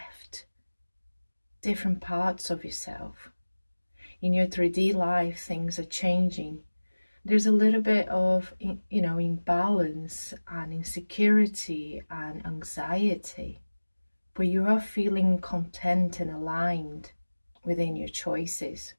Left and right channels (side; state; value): both; inverted; correlation -1.00